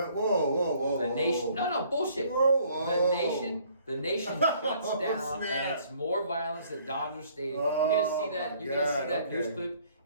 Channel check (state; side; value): inverted; both; correlation -0.60